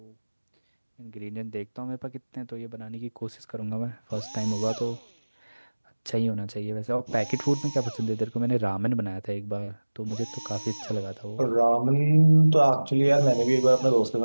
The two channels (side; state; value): both; inverted; correlation -1.00